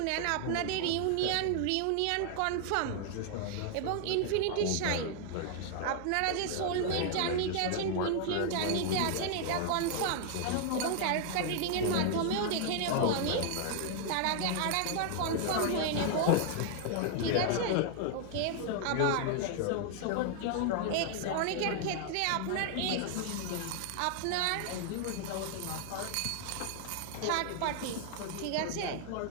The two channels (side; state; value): both; different; correlation 0.00